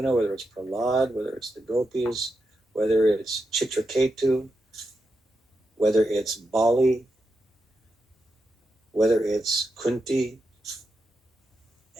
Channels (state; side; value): normal; both; correlation 0.86